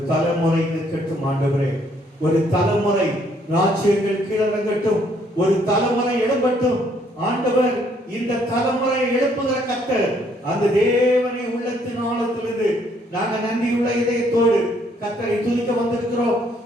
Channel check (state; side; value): normal; both; correlation 0.67